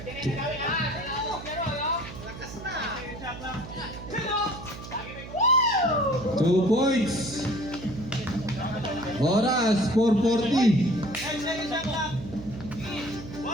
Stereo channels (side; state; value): right; noise; hum, 12 dB below the sound